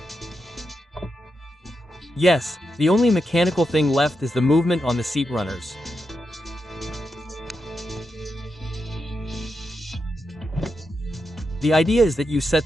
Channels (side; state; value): both; normal; correlation 0.86